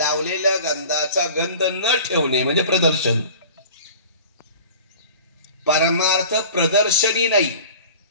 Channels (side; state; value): both; inverted; correlation -0.42